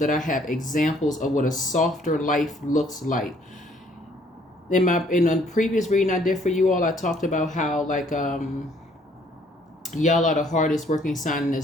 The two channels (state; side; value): normal; both; correlation 0.62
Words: I have examples of what a softer life looks like. In a previous reading I did for you all, I talked about how, like, y'all are the hardest working sign in the